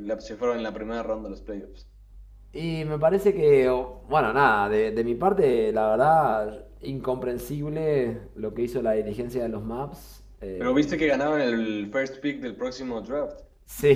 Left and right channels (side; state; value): both; identical; correlation 1.00